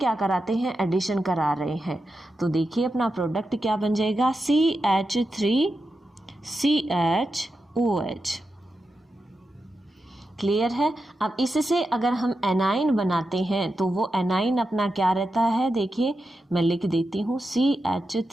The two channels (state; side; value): normal; both; correlation 0.89